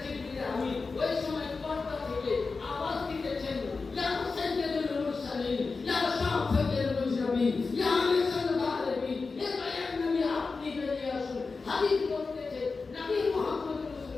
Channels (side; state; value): right; quieter; 4.3 dB